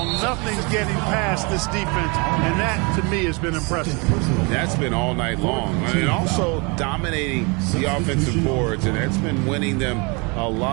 Nothing's getting past this defense, and that, to me, has been impressive. That's been all night long. And also dominating the offensive boards, and that's been winning them a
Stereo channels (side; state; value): left; quieter; 30.1 dB